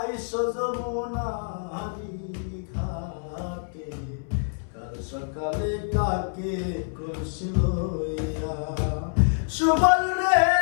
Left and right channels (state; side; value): silent; right; 60 dB below the other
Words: যমুনারি ঘাটে। কাল সকালে কাকে করছিল ইয়া। সুবল রে